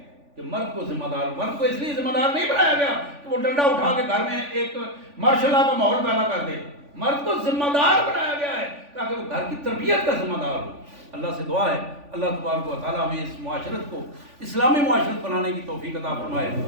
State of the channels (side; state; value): left; late; 3.5 ms